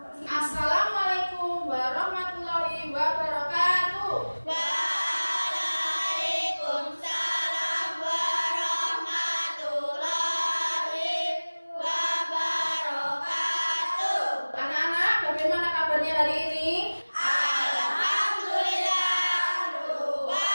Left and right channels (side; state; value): both; inverted; correlation -1.00